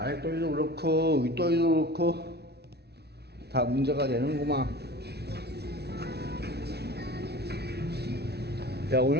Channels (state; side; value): late; left; 0.48 ms